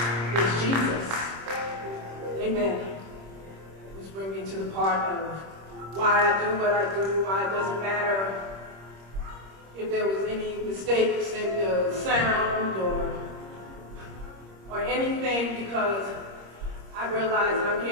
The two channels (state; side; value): late; left; 26 ms